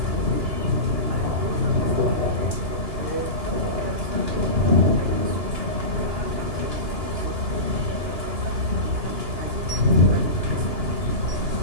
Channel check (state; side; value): late; left; 2.9 ms